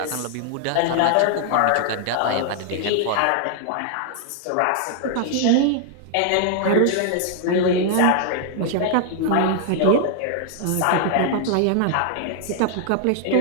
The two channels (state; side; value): different; both; correlation 0.00